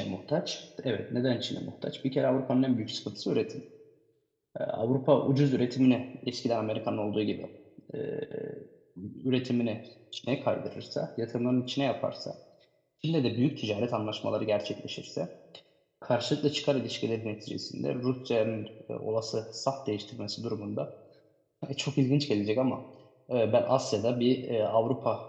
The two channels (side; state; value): both; identical; correlation 1.00